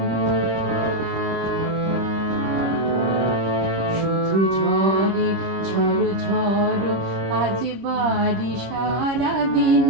শুধু ঝড়ে ঝড়ো ঝড়ো আজ বাড়ি সারাদিন,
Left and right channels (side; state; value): left; late; 26 ms